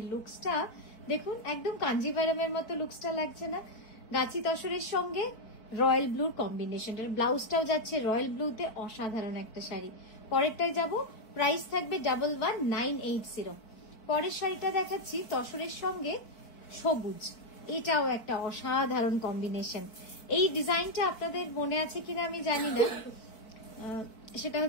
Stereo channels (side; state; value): right; late; 4.5 ms